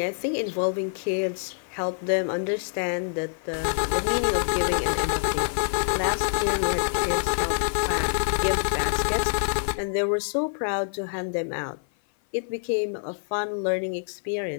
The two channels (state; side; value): silent; right; 56 dB below the other